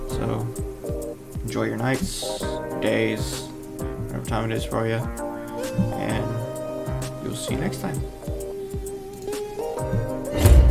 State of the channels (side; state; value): both; identical; correlation 1.00